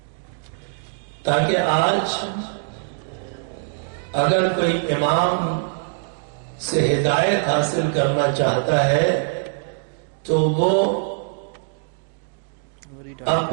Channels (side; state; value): left; silent; digital silence